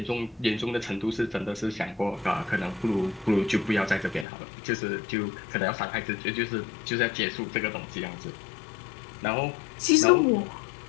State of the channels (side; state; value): right; drops out; at 4.2 s